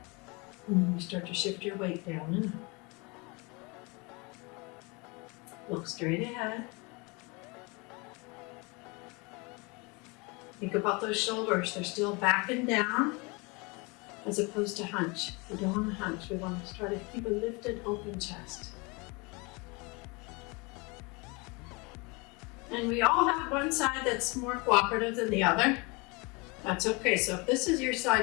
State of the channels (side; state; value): right; quieter; 28.0 dB